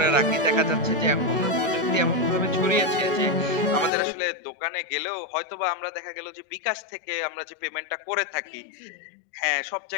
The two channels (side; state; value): right; drops out; at 3.9 s